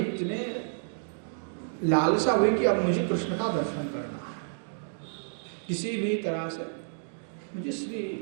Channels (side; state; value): left; silent; digital silence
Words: लालसा हुई कि अब मुझे कृष्ण का दर्शन करना है, किसी भी तरह से मुझे श्री